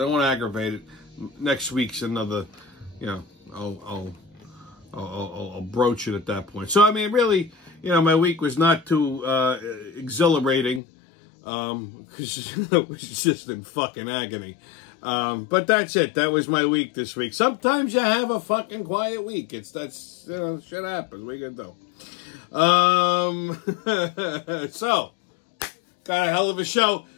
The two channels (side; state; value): right; drops out; at 10.8 s